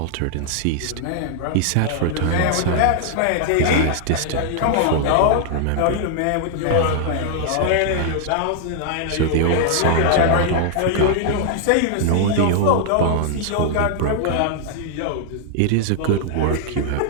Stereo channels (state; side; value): different; both; correlation 0.00